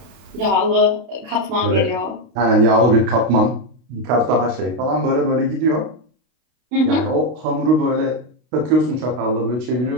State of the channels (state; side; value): late; left; 32 ms